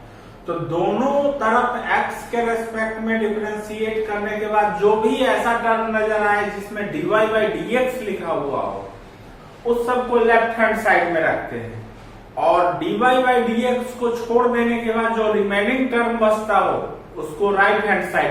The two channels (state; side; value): identical; both; correlation 1.00